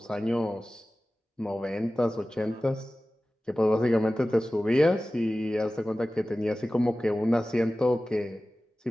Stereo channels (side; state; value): both; normal; correlation 0.96